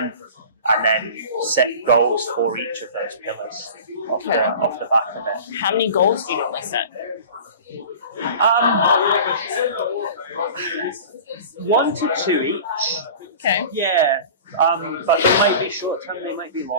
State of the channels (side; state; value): both; inverted; correlation -0.38